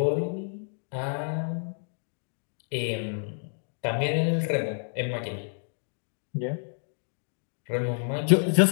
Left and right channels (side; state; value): right; silent; digital silence